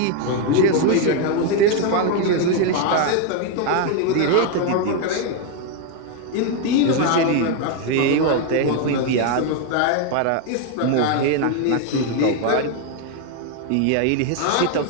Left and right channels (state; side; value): different; both; correlation 0.01